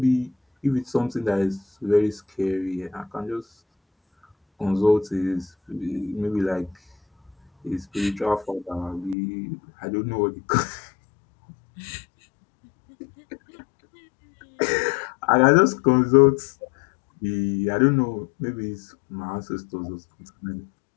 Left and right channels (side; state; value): right; drops out; at 9.2 s